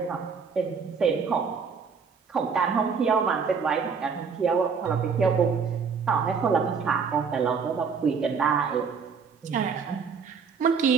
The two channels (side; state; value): left; quieter; 5.9 dB